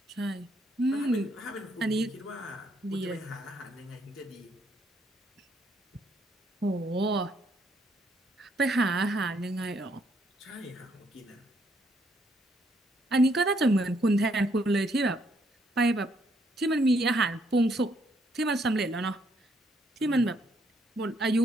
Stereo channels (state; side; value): normal; both; correlation 0.71